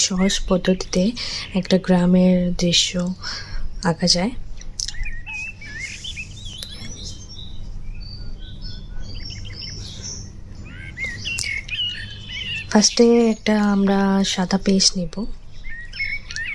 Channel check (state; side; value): identical; both; correlation 1.00